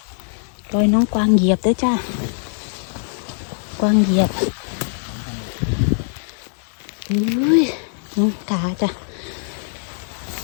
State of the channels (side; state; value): right; silent; 61 dB below the other